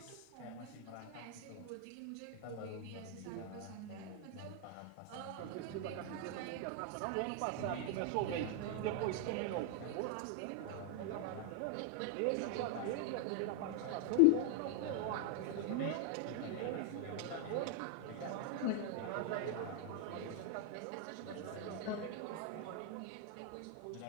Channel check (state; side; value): different; both; correlation 0.00